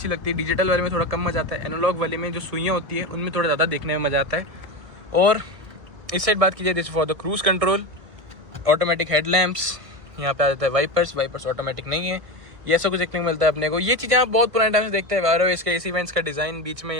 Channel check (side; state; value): left; late; 1.7 ms